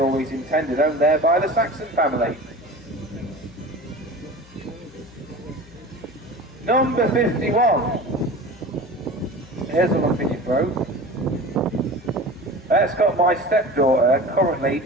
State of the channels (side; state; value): left; noise; hum, 23 dB below the sound